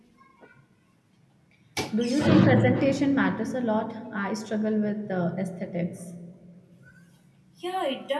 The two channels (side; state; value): both; identical; correlation 1.00